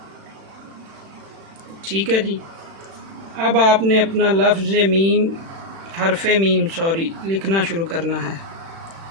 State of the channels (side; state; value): left; late; 36 ms